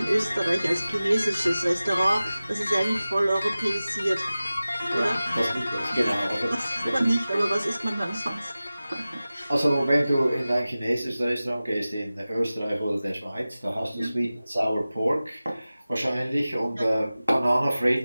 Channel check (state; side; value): inverted; both; correlation -0.96